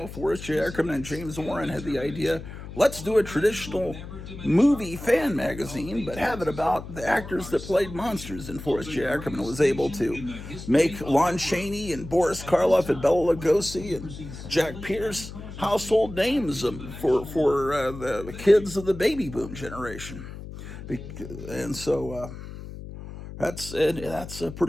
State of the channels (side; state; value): left; noise; hum, 12 dB below the sound